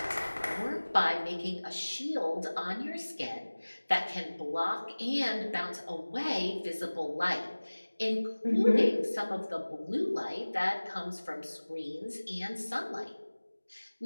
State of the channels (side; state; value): both; inverted; correlation -1.00